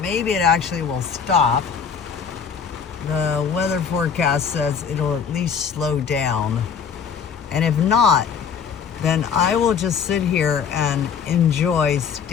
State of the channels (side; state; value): right; quieter; 6.7 dB